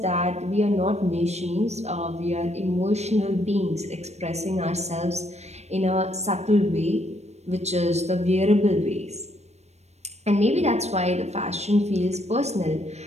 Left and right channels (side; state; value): left; late; 0.32 ms